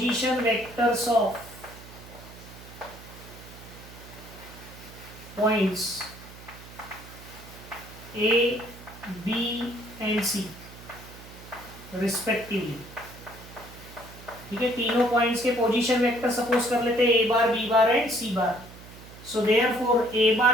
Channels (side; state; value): right; noise; hum, 17 dB below the sound